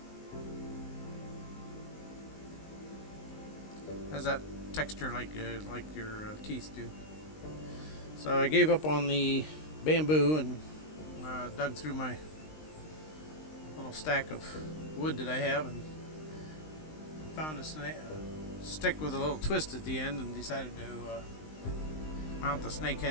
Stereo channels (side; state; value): right; late; 19 ms